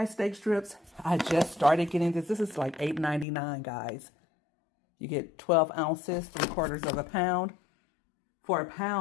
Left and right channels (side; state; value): right; drops out; at 3.2 s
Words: steak strips, I just started getting this. This is like $8.99, guys. You get 12 ounces, 3/4 of a pound. For a